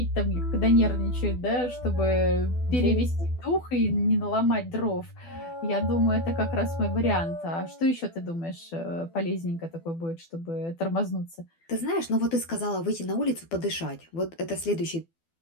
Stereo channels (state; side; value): late; right; 12 ms